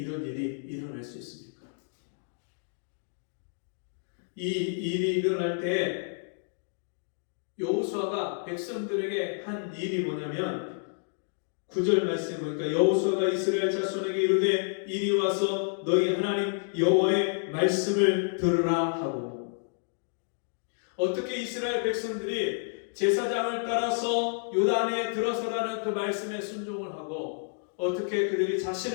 일이 일어날 수 있습니까? 이 일이 일어날 때 여호수아가 백성들에게 한 일이 뭐냐면 9절 말씀에 보니까 여호수아가 이스라엘 자손에게 이르되 이리 와서 너희 하나님 여호와의 말씀을 들으라 하고 어떻게 이스라엘 백성들이 제사장을 따라서 요단에 들어서라는 그 말씀에 순종을 하고 어떻게 그들이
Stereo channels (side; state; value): right; silent; digital silence